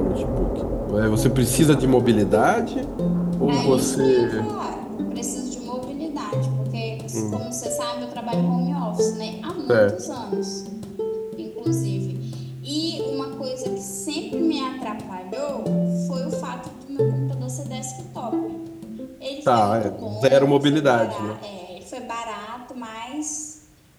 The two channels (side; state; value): both; identical; correlation 1.00